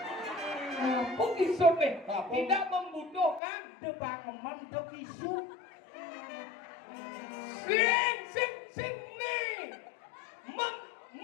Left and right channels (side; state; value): right; drops out; at 3.4 s